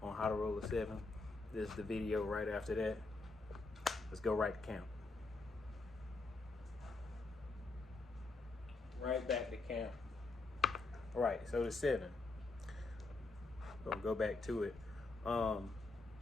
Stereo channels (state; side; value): quieter; right; 3.5 dB